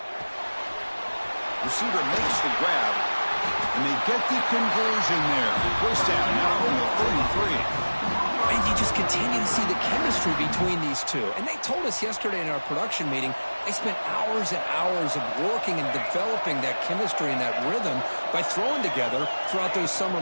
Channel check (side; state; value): both; inverted; correlation -1.00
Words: Receiver makes the grab, and they get the conversion there. First down, now from the 33. And you just continue to see the chemistry between these two. And they told us yesterday in our production meeting, they spent hours and hours of working and developing that chemistry and that rhythm by throwing together throughout those summer